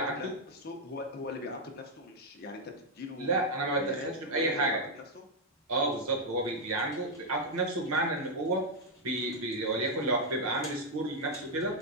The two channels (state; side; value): normal; both; correlation -0.01